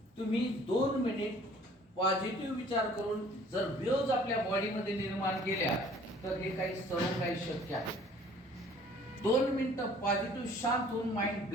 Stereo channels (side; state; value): both; normal; correlation 0.54